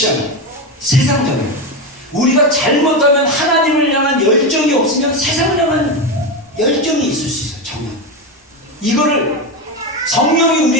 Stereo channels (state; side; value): normal; both; correlation 0.14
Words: 세상적인. 우리가 잘못하면 하나님을 향한 열정이 없으면 세상을 향한 열정이 있을 수 있어요. 정말 이거를 성령이